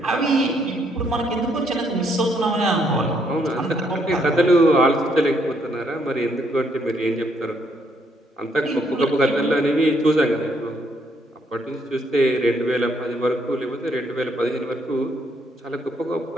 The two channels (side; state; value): both; normal; correlation 0.71